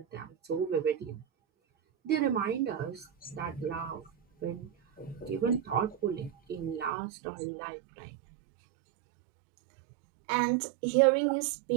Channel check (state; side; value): drops out; left; at 6.9 s